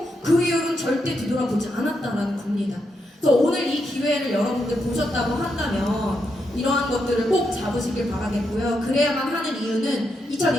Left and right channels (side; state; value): both; normal; correlation 0.82